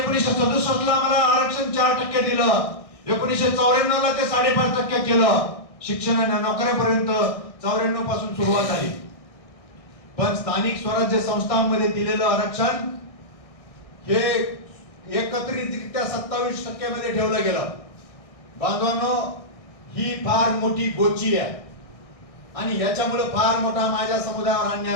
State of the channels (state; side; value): late; right; 1.6 ms